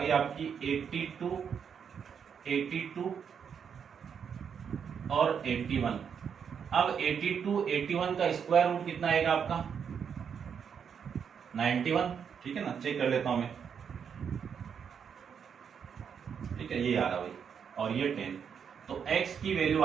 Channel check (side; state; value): left; quieter; 7.2 dB